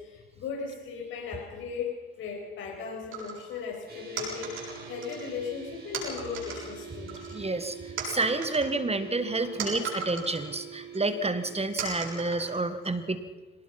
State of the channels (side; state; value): both; normal; correlation 0.28